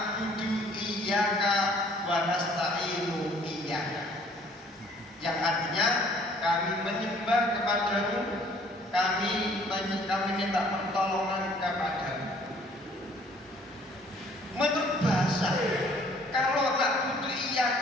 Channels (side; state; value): both; normal; correlation 0.58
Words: iyyaka wa nasta'inu iyyaka, yang artinya kami menyembah kepadamu, kami minta pertolongan kepadamu. Menurut bahasa, kalau na'budu